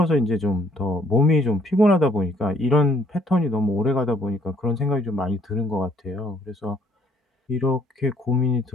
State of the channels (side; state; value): both; normal; correlation 0.64